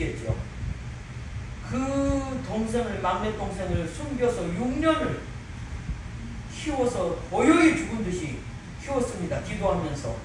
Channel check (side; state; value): both; identical; correlation 1.00